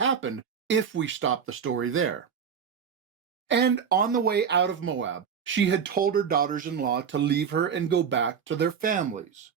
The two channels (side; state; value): left; quieter; 7.1 dB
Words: if we stop the story there. And on the way out of Moab, she had told her daughters-in-law to leave her and go back to their families.